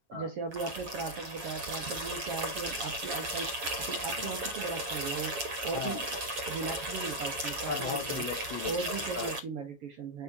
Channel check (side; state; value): left; late; 7.8 ms